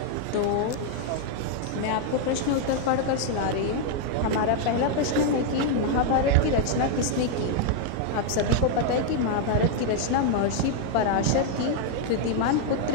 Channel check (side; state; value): both; different; correlation 0.00